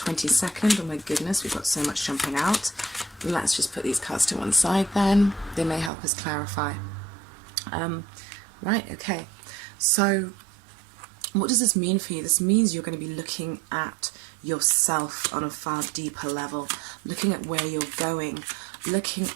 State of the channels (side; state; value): left; drops out; at 5.9 s